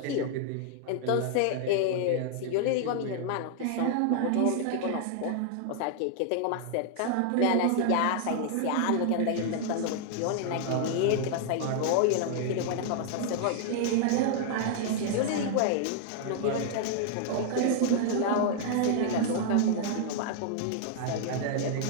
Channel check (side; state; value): both; different; correlation 0.00